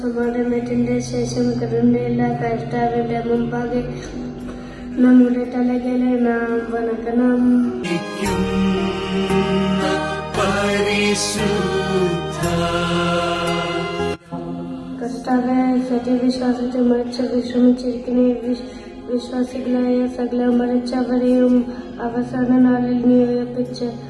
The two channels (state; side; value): identical; both; correlation 1.00